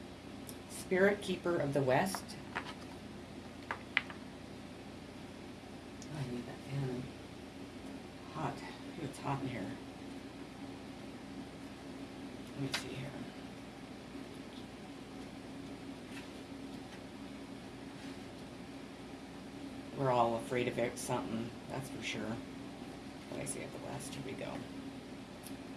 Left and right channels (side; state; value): both; identical; correlation 1.00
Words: Spirit Keeper of the West. I need that fan. Hot. It's hot in here. Let me see here. We're all afraid of it, something, that's for sure. What I say at the West, here we go.